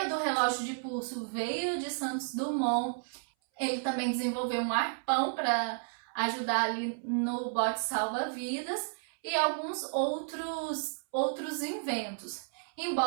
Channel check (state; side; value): silent; left; 56 dB below the other